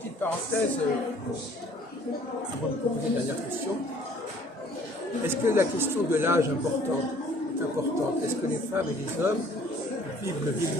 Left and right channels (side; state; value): both; normal; correlation 0.56